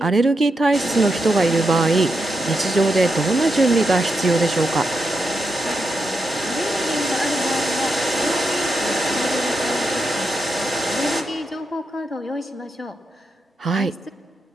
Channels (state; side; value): normal; both; correlation 0.86